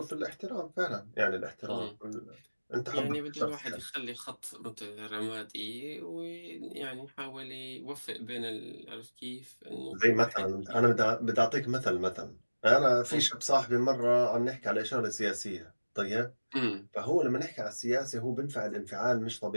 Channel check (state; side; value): inverted; both; correlation -1.00